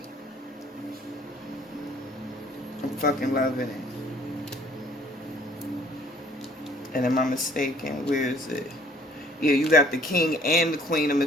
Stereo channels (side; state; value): both; normal; correlation 0.57